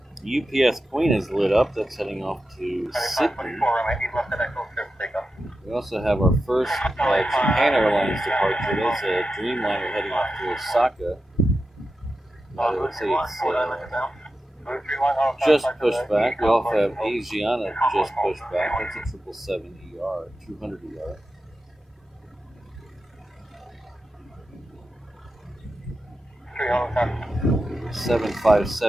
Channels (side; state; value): both; normal; correlation 0.91